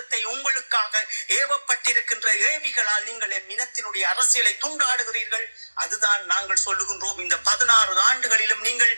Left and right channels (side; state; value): both; inverted; correlation -1.00